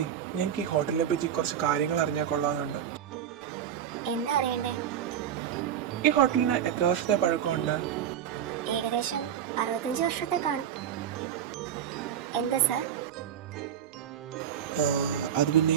ഞങ്ങൾക്ക് ഈ ഹോട്ടലിനെ പറ്റി കുറച്ച് കാര്യങ്ങൾ അറിഞ്ഞാൽ കൊള്ളാമെന്നുണ്ട്. എന്താ അറിയണ്ടേ? ഈ ഹോട്ടലിന് എത്ര വർഷത്തെ പഴക്കമുണ്ട്? ഏകദേശം 65 വർഷത്തെ കാണും. എന്താ സാർ? അത് പിന്നെ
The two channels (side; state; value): left; quieter; 9.5 dB